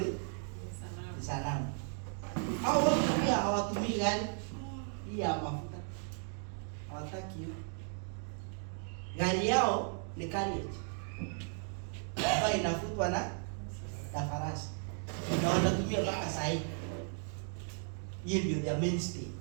sanamu. Hao wote pia hawatumii gari hii ya mafuta. Hawataki hiyo. Gari yao ni carriage ambayo inafutwa na farasi. Na wanatumia mpaka saa hii. Hiyo ndio their mainstay.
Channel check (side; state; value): left; silent; 54 dB below the other